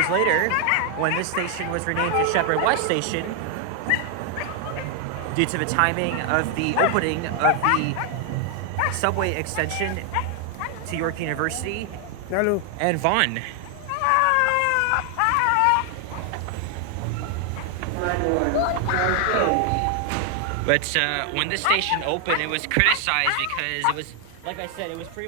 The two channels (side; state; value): both; different; correlation 0.00